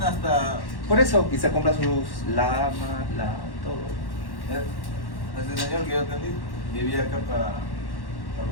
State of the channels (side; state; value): right; late; 1.1 ms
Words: hasta. Por eso, y se compra sus lamas, todo. Ese señor que yo atendí vivía acá para